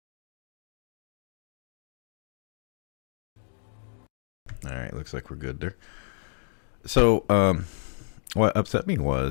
Alright, looks like we're good there. So, what upset me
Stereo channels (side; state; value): right; silent; digital silence